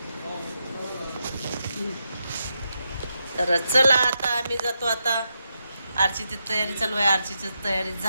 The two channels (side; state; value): both; inverted; correlation -0.85